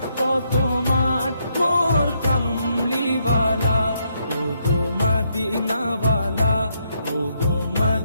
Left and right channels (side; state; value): both; inverted; correlation -0.76